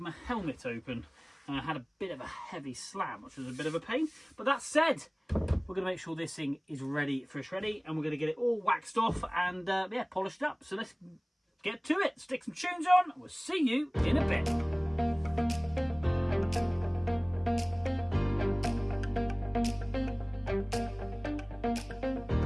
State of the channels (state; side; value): identical; both; correlation 1.00